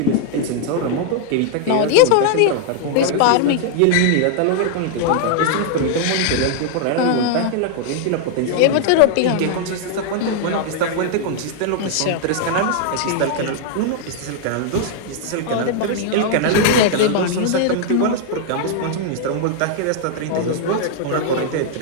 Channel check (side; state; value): both; different; correlation 0.00